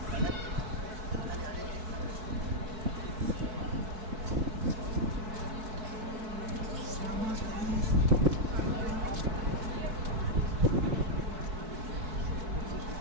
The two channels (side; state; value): left; late; 4.6 ms